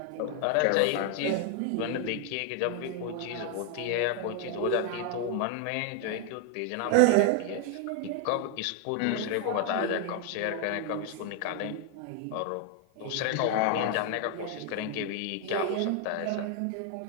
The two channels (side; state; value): both; different; correlation 0.01